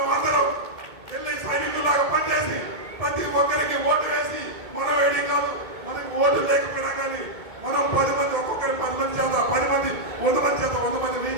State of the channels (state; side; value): late; left; 2.2 ms